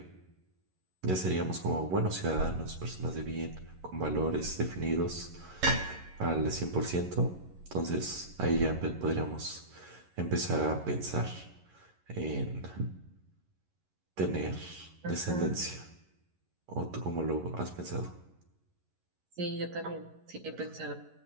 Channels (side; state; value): left; late; 11 ms